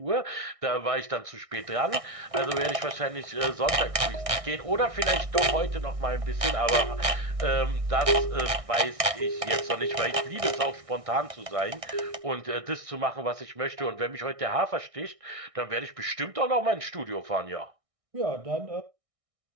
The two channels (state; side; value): late; left; 1.6 ms